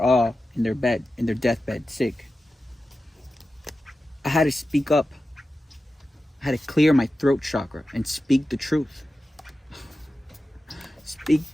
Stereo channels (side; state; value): both; normal; correlation 0.93